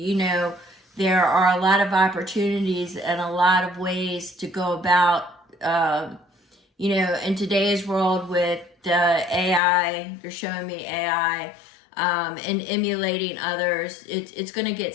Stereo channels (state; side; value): drops out; right; at 9.6 s